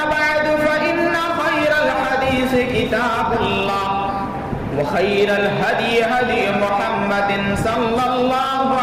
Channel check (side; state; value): both; identical; correlation 1.00